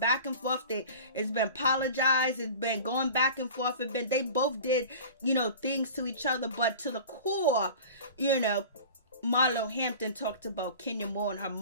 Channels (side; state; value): both; inverted; correlation -0.38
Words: and forth. It's been apologized. It's been going back and forth. They both did, things to each other, but to the core, Marlo Hampton talked about Kenya Moore and her